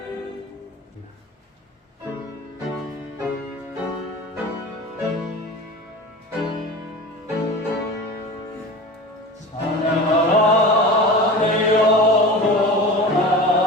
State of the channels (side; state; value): both; normal; correlation 0.33